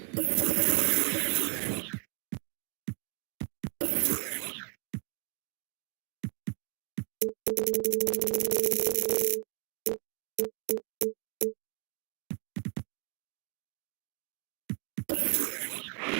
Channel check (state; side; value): quieter; left; 36.5 dB